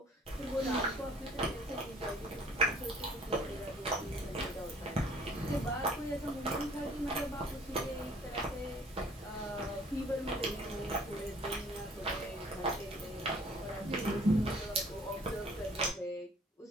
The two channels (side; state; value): both; normal; correlation 0.55